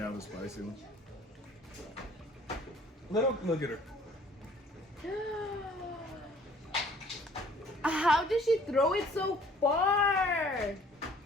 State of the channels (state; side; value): normal; both; correlation 0.55